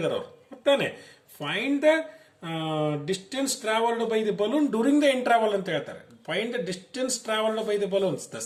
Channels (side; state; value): both; identical; correlation 1.00